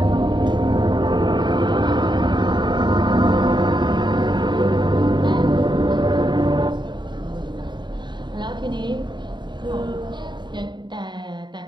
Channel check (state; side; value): late; left; 0.22 ms